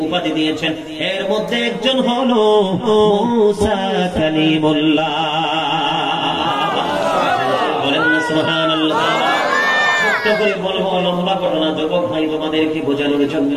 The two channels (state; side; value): identical; both; correlation 1.00